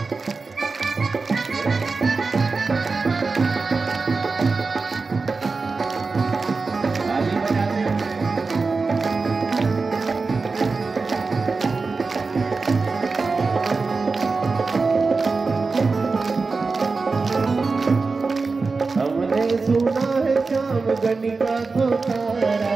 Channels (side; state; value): left; quieter; 4.2 dB